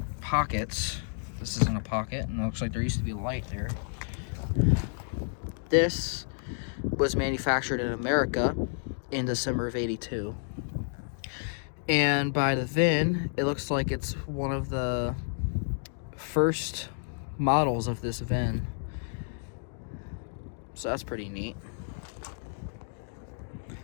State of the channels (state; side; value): silent; right; digital silence